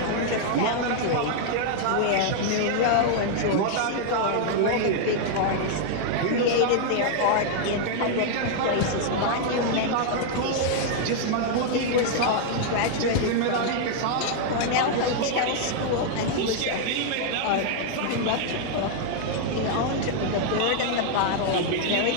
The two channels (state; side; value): different; both; correlation 0.00